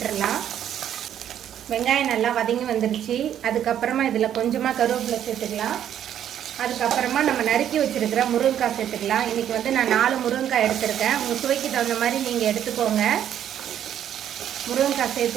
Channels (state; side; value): quieter; left; 10.2 dB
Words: வெங்காயம் நல்லா வதங்கி வந்துருச்சு. அதுக்கப்புறமா இதில் கொஞ்சமாக கருவேப்பிலை சேர்த்துக்கலாம். அதுக்கப்புறமா நம்ம நறுக்கி வச்சுருக்கிற முருங்கைக்காய் சேர்த்துக்கலாம். இன்றைக்கி நான் 4 முருங்கைக்காய் எடுத்துருக்கேன். உங்கள் சுவைக்கு தகுந்த மாதிரி நீங்கள் எடுத்துக்கோங்க. முருங்கைக்காய்